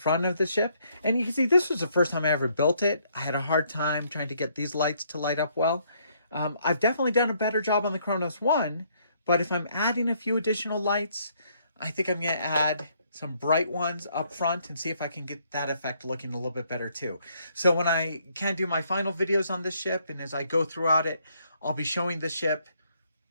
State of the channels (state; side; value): inverted; both; correlation -0.69